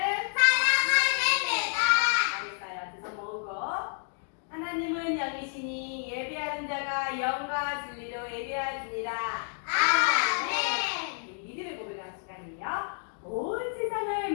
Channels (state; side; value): silent; right; 58 dB below the other